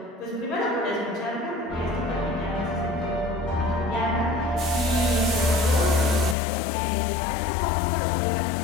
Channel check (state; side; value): drops out; right; at 6.4 s